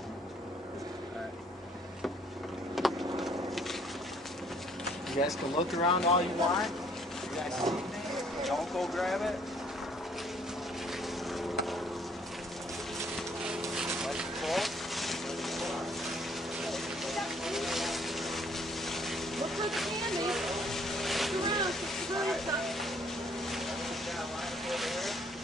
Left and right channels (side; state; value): both; normal; correlation 0.63